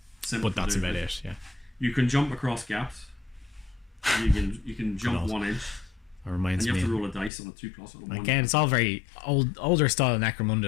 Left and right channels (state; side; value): drops out; right; at 7.3 s